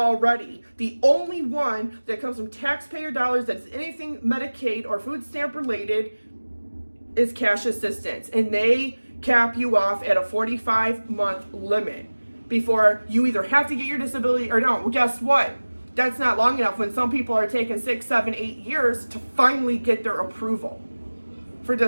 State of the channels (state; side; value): inverted; both; correlation -1.00